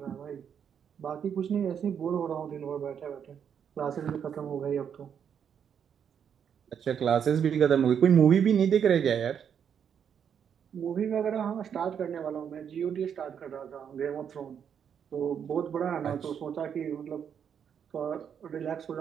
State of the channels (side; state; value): left; quieter; 8.0 dB